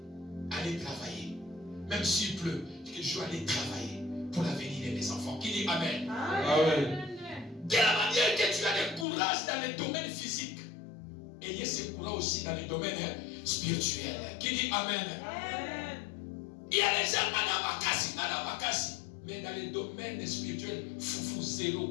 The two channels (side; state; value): right; drops out; at 9.1 s